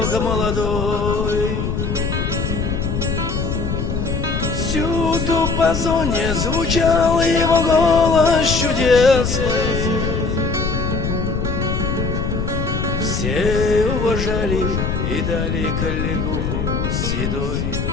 молодой. Всюду по зоне звучал его голос чудесный. Все уважали и дали коллегуху седой.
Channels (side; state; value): left; noise; rumble, 1 dB below the sound